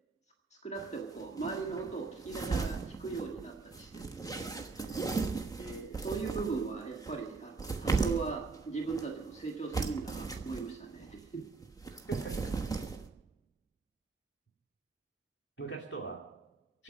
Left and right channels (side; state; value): left; quieter; 4.1 dB